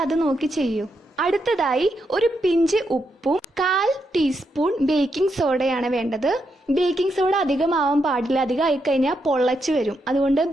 അത് നോക്കി ചെയ്യൂ. അടുത്തതായി ഒരു പിഞ്ച് ഉപ്പും 1/4 ടീസ്പൂൺ ബേക്കിംഗ് സോഡയാണ് വേണ്ടത്. ബേക്കിംഗ് സോഡ അധികമാവാൻ പാടില്ല, അധികം ആയിക്കഴിഞ്ഞാൽ പൊള്ളച്ച് വരും. അതുകൊണ്ട്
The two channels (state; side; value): normal; both; correlation 0.82